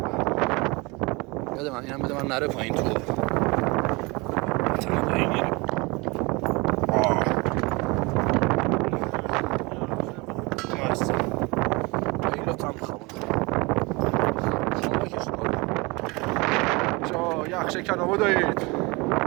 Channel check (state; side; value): quieter; left; 25.9 dB